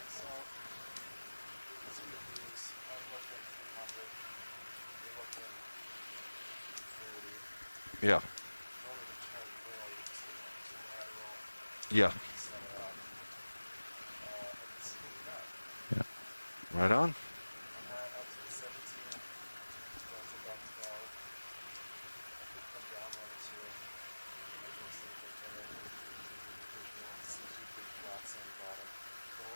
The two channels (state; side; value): inverted; both; correlation -1.00